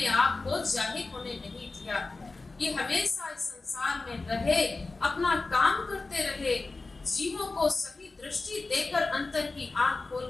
आप को जाहिर होने नहीं दिया। ये हमेशा इस संसार में रहे, अपना काम करते रहे, जीवों को सही दृष्टि देकर अंतर की आंख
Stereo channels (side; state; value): right; quieter; 3.6 dB